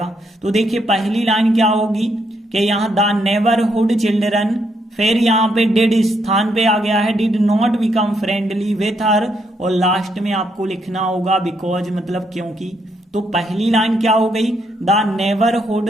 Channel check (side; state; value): both; normal; correlation 0.75